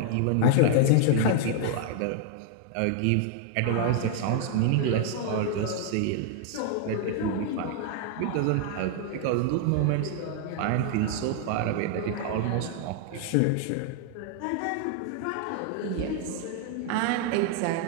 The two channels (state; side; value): different; both; correlation 0.00